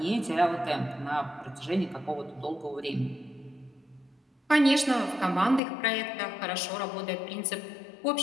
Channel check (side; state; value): right; drops out; at 5.6 s